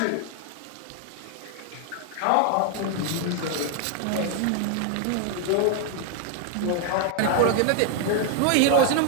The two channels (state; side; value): different; both; correlation 0.00